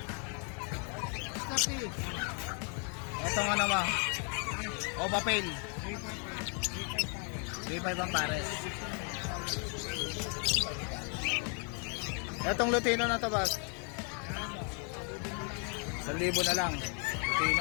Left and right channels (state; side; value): quieter; right; 39.3 dB